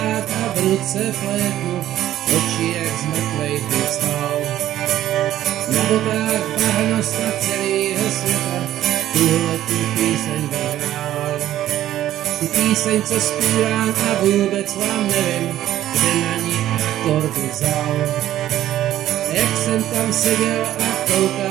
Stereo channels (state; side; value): quieter; left; 13.0 dB